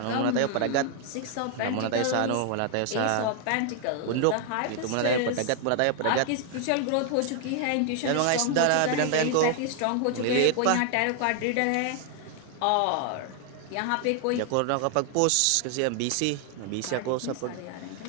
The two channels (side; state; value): both; different; correlation 0.00